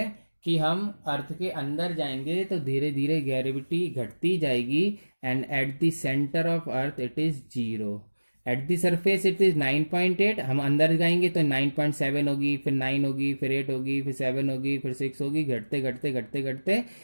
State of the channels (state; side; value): inverted; both; correlation -1.00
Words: कि हम अर्थ के अंदर जाएंगे तो धीरे धीरे ग्रेविटी घटती जाएगी, and at the centre of earth it is 0, eight the surface it is 9.8। हम अंदर जाएंगे तो 9.7 होगी, फिर 9 होगी, फिर 8 होगी, फिर 7 होगी, फिर 6 होगी, घटते घटते घटते घटते